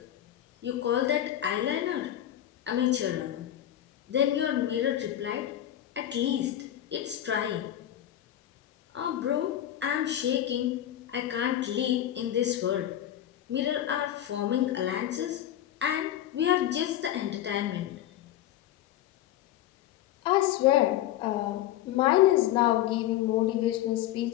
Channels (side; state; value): right; quieter; 12.3 dB